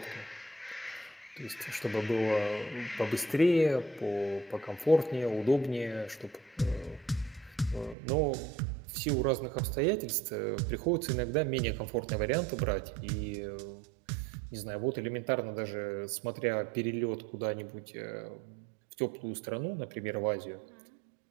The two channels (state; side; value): drops out; left; at 8.0 s